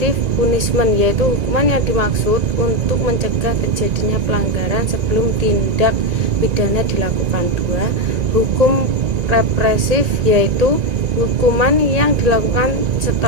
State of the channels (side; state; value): left; late; 1.9 ms